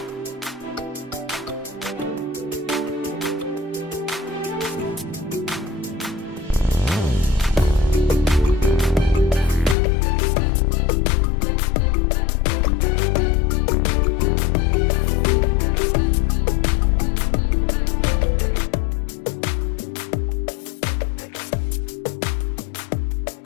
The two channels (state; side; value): drops out; right; at 9.8 s